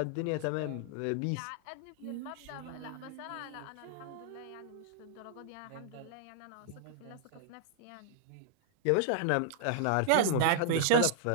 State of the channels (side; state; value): both; different; correlation -0.01